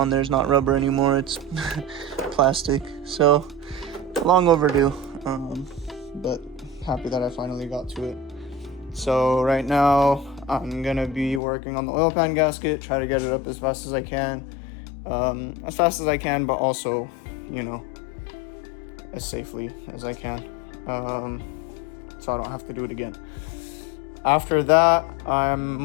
there is not rubber anymore. It's plastic. So long overdue, but happy that I finally got to it. So right now I'm gonna be working on the oil pan gasket, try to get it up as fast as I can, but also, you know, as safely as I can, so I don't have to do it again. After that, I'm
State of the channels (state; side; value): drops out; right; at 11.4 s